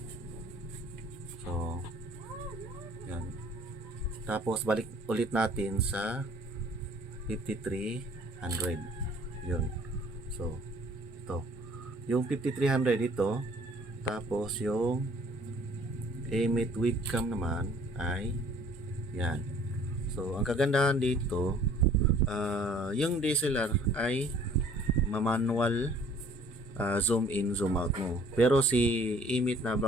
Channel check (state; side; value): normal; both; correlation 0.54